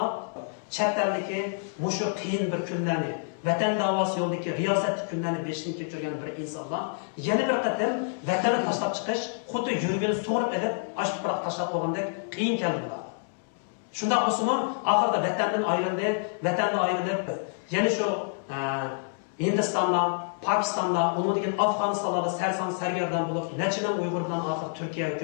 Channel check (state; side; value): silent; right; 59 dB below the other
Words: chet eldagi mushu qiyin bir kunlarni, vatan davosi yo'lidagi riyosatli kunlarni beshini kechirgan bir insonlar yana bir qatim vatanni tashlab chiqish, xuddi yurgini so'rib edib, ash tuproq tashlab qo'ygandek qiyin keldi bular. Shunda bo'lsa-mu, oxirida vatandan ayrilib, yana shu Hindistonda, Pakistan'da, onun için Afganistan'da sersan sergerdan bulup, neçinen Uygur'dan ahir Türkiye